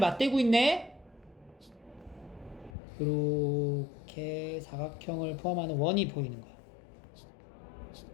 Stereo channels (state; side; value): drops out; right; at 2.8 s